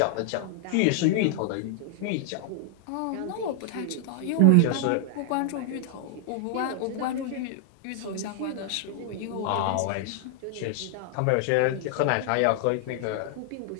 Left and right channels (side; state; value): both; different; correlation -0.01